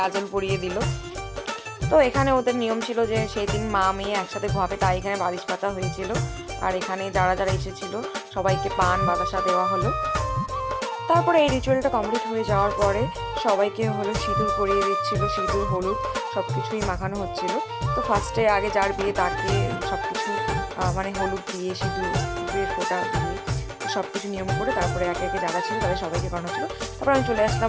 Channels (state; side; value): identical; both; correlation 1.00